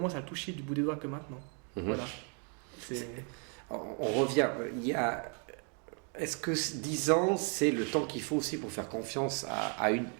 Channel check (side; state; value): left; quieter; 39.4 dB